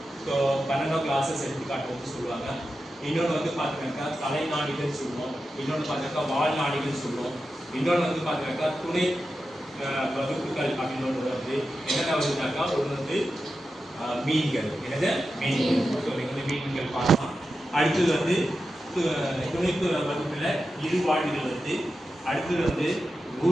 ஸோ 12 கிளாஸஸ் எடுத்துக்காட்டு வந்து சொல்லுவாங்க. இன்னொன்று வந்து பார்த்தீங்கன்னாக்கா தலைநாடிகள் சொல்லுவோம். இன்னொன்று பார்த்தீங்கன்னா வாழ்நாடிகள் சொல்லுவோம். இன்னொன்று வந்து பார்த்தீங்கன்னாக்கா துணை வகுப்புகள் அப்படின்னு ஒன்று வந்து என்னென்ன வருதுனாக்கா ஒன்று வந்து மீன்கள். என்னது மீன்கள். ஸோ நீங்கள் வந்து மீன்கள் பார்க்கலாம். அடுத்தது வந்து துணைப்பு வகுப்பில் இருவாழ்விகள் வந்து. அடுத்தது வந்து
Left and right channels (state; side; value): normal; both; correlation 0.91